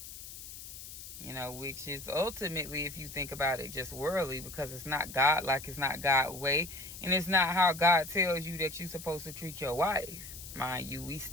Which is ultimately, if you think about it, just worldly, because it's not God, like, it's not God's way. And it's not how God tells you that you're supposed to treat your wife. Mind you, we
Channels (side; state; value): left; noise; hiss, 12 dB below the sound